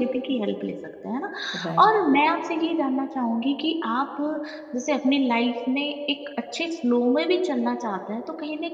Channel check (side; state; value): both; identical; correlation 1.00